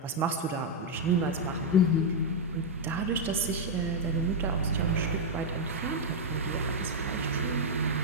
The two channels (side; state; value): both; normal; correlation -0.01